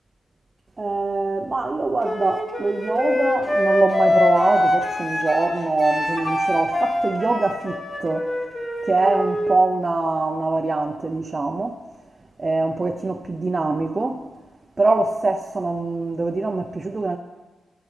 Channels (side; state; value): both; normal; correlation 0.94